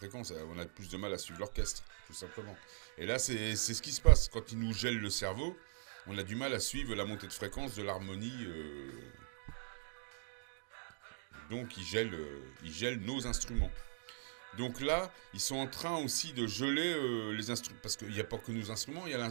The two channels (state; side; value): silent; left; digital silence